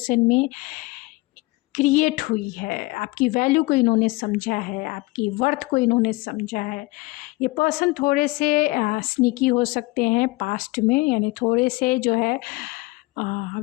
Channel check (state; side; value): quieter; right; 22.9 dB